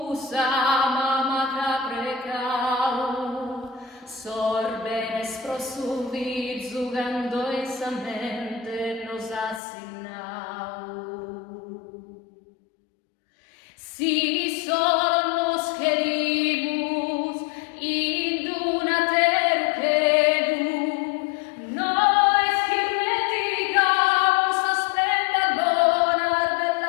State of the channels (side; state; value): right; drops out; at 9.6 s